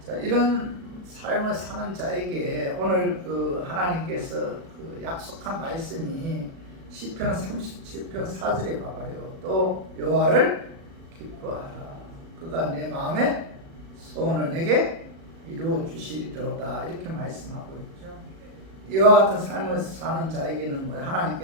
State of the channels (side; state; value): left; late; 37 ms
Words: 자, 이런 삶을 사는 자에게 오늘 하나님께서 약속한 말씀이 시편 37편 4절에 봐봐요. 또 여호와를 기뻐하라. 그가 내 마음의 소원을 내게 이루어 주시리로다. 이렇게 말씀하고 있죠. 이와 같은 삶을 사는 자에게는